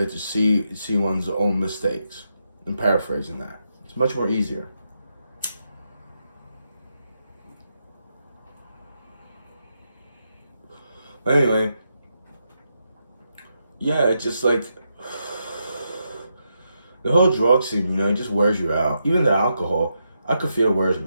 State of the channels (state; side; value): inverted; both; correlation -0.83